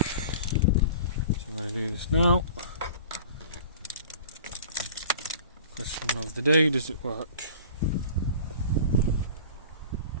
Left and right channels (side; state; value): both; inverted; correlation -0.41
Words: I'm going to do this now. Question of the day, does it work?